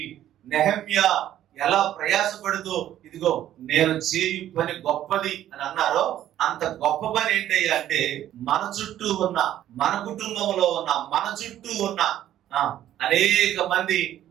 నెహెమ్యా ఎలా ప్రయాసపడుతూ, ఇదిగో నేను చేయు పని గొప్పది అని అన్నారో, అంత గొప్ప పని ఏంటయ్యా అంటే, మన చుట్టూ ఉన్న, మన కుటుంబంలో ఉన్న, మన చుట్టూ ఉన్న అనేక మంది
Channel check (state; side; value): quieter; left; 12.1 dB